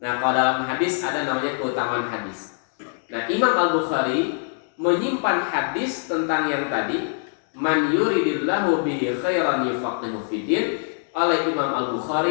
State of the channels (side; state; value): right; silent; digital silence